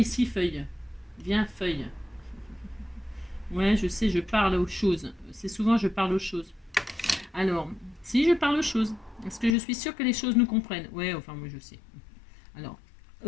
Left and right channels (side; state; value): right; drops out; at 9.6 s